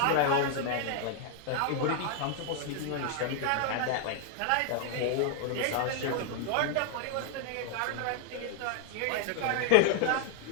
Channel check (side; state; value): both; different; correlation 0.00